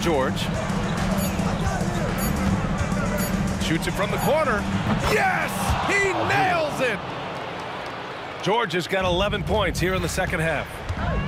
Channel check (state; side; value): identical; both; correlation 1.00